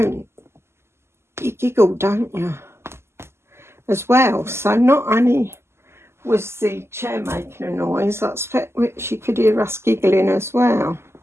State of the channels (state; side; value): late; left; 0.12 ms